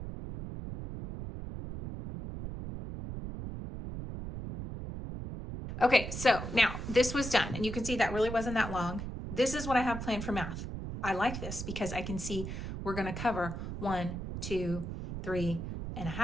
Okay, so now this was done, and you can see that really wasn't that long. This is what I have planned for math. I like this because I can see we're going to cover 1, 2,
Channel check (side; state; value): right; noise; rumble, 6 dB below the sound